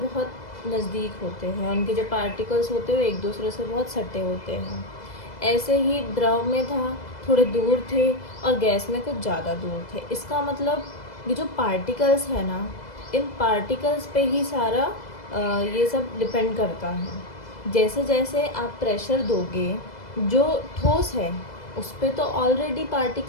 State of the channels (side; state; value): right; late; 2.0 ms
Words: बहुत नज़दीक होते हैं, उनके जो पार्टिकल्स होते हैं वो एक दूसरे से बहुत सटे होते हैं। ऐसे ही द्रव में था, थोड़े दूर थे, और गैस में कुछ ज़्यादा दूर थे। इसका मतलब ये जो पार्टिकल्स है ना, इन पार्टिकल्स पे ही सारा ये सब डिपेंड करता है। जैसे जैसे आप प्रेशर दोगे, जो ठोस है उस पर तो ऑलरेडी